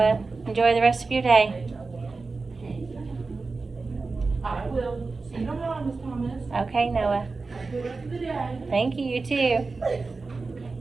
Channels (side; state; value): left; quieter; 4.0 dB